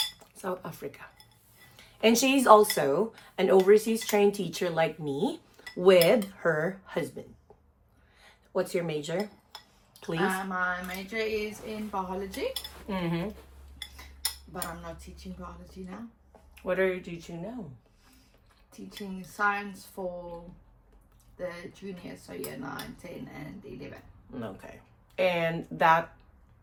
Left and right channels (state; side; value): identical; both; correlation 1.00